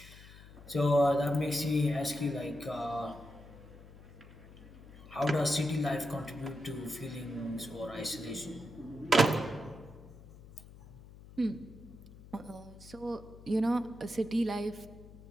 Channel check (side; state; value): left; noise; hum, 18 dB below the sound